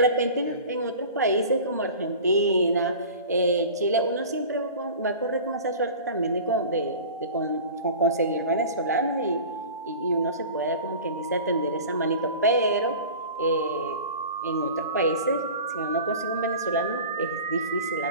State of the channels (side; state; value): both; inverted; correlation -0.38